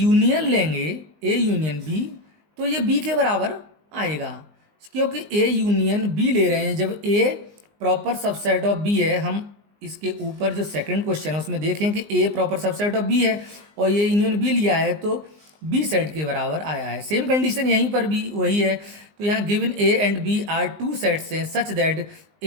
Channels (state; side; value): late; left; 19 ms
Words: लेंगे ए यूनियन बी, तो ये बी के बराबर आएगा, क्योंकि ए यूनियन बी ले रहे हैं। जब ए प्रॉपर सबसेट ऑफ बी है, हम इसके ऊपर जो सेकंड क्वेश्चन है उसमें देखें कि ए प्रॉपर सबसेट ऑफ बी है और ये यूनियन बी लिया है, तो बी सेट के बराबर आया है। सेम कंडीशन यहीं पर भी वही है। तो यहाँ given A and B are two sets हैं such that